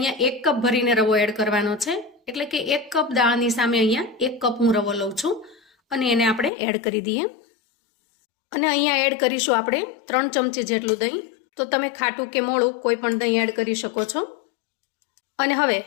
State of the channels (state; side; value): drops out; right; at 6.5 s